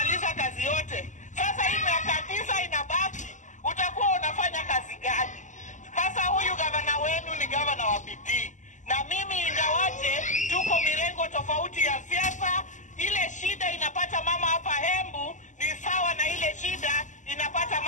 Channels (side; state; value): right; late; 0.36 ms